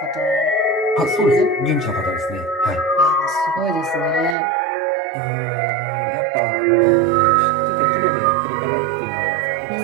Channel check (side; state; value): left; drops out; at 4.4 s